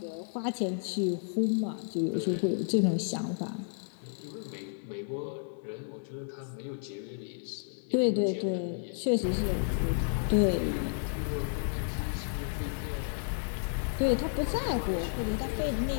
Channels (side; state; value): right; silent; digital silence